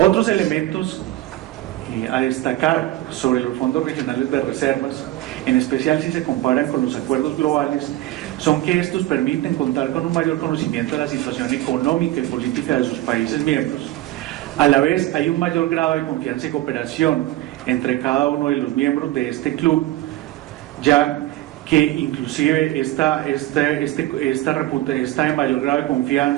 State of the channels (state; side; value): quieter; left; 15.9 dB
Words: elementos a destacar sobre los fondos regionales de reservas, en especial si se comparan con los acuerdos globales, son que estos permiten contar con un mayor conocimiento de la situación económica y política de sus países miembros. A la vez hay un mayor grado de confianza y cooperación entre cada uno de los miembros de este club, ya que inclusive esta de mayor grado de